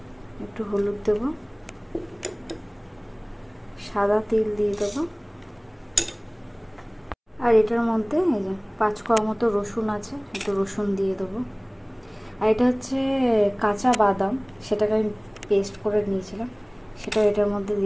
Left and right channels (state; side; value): identical; both; correlation 1.00